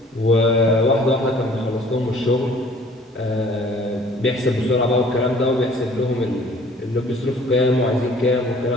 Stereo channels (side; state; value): both; normal; correlation 0.53